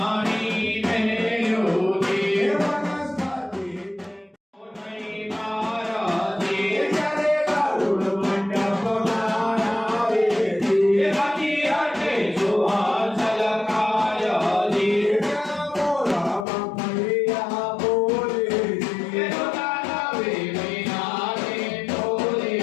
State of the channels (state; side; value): drops out; right; at 16.4 s